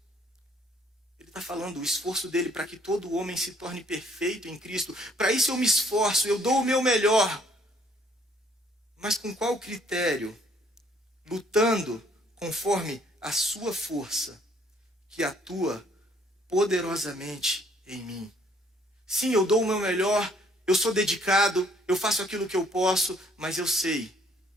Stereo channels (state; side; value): normal; both; correlation 0.63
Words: Está falando o esforço dele para que todo homem se torne perfeito em Cristo. Para isso eu me esforço, eu dou o meu melhor. Mas com qual critério? Lutando conforme a sua força, que atua poderosamente em mim. Sim, eu dou o meu melhor, eu sou dedicado, eu faço aquilo que eu posso, mas eu sei